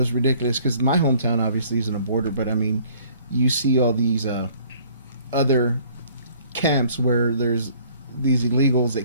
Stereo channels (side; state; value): both; inverted; correlation -0.56